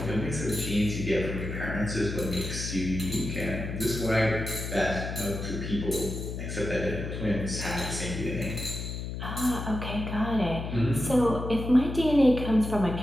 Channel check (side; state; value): left; noise; hum, 6 dB below the sound